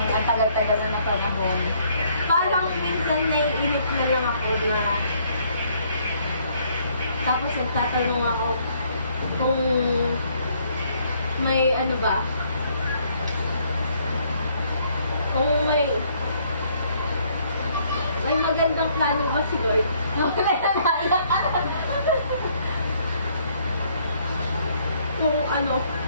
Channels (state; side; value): inverted; both; correlation -0.66